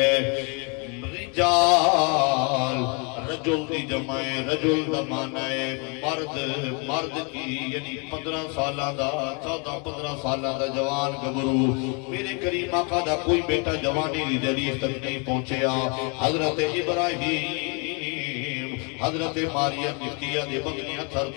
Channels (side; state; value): right; quieter; 34.5 dB